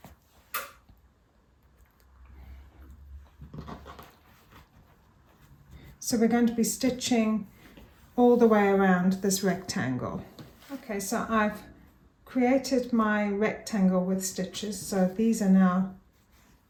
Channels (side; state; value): both; identical; correlation 1.00